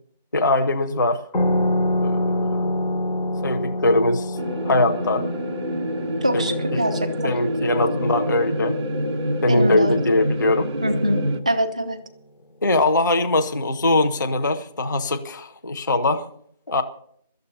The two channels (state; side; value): inverted; both; correlation -0.66